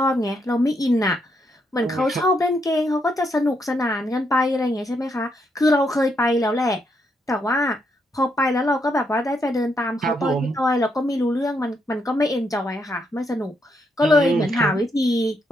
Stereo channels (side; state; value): both; normal; correlation 0.78